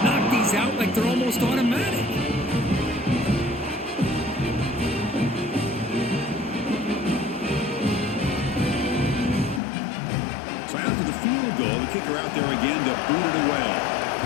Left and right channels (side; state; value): right; drops out; at 9.6 s